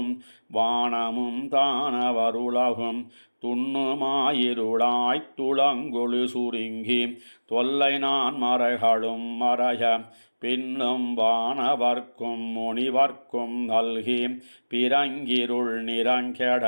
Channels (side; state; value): both; inverted; correlation -1.00